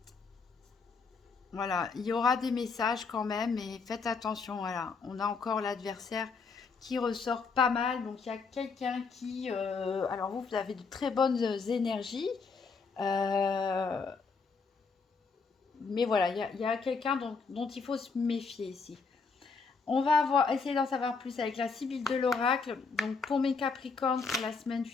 Voilà, il y aura des messages quand même, mais faites attention. Voilà, on a encore l'adversaire qui ressort pas mal. Donc il y a quelqu'un qui... alors vous avez de très bonnes énergies. Mais voilà, il y a quelqu'un dont il faut se méfier ici. On va essayer d'en savoir plus avec la Sibylle de l'Oracle. Donc pour mes Capricornes, pour la semaine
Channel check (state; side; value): quieter; right; 4.8 dB